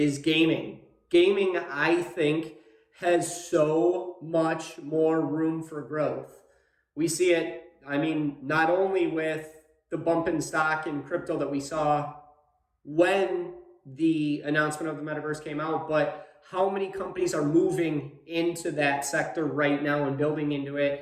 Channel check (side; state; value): both; identical; correlation 1.00